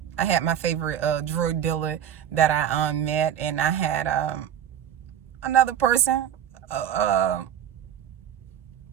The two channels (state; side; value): quieter; left; 9.8 dB